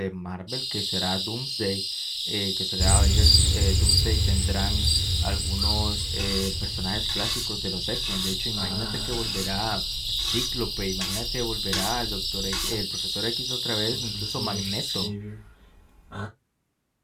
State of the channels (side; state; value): both; identical; correlation 1.00